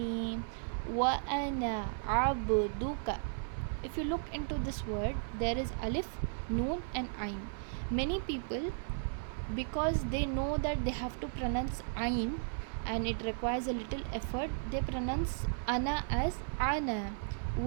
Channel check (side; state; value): left; silent; 54 dB below the other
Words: wa ana abduka. If you look into this word, there is alif, noon and ain. Many people, because they know that they have to pronounce ain and it requires a little effort, they pronounce ana as ana,